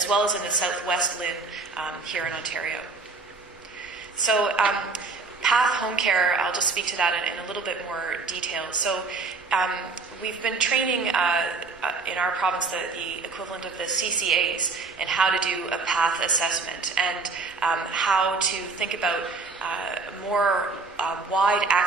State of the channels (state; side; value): quieter; left; 4.1 dB